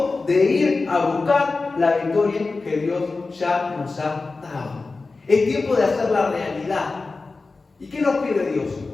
de ir a buscar la victoria que Dios ya nos ha dado. Es tiempo de hacerla realidad. ¿Y qué nos pide Dios?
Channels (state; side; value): quieter; right; 3.8 dB